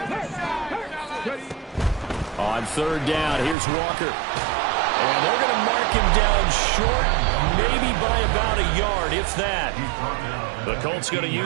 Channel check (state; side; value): drops out; left; at 3.6 s